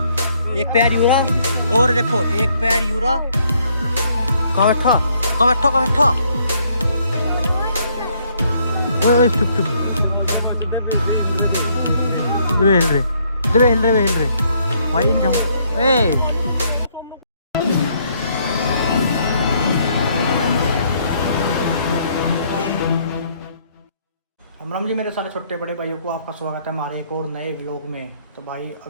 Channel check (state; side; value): inverted; both; correlation -0.68